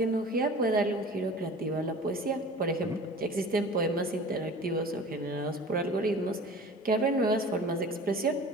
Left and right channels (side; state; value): both; normal; correlation 0.41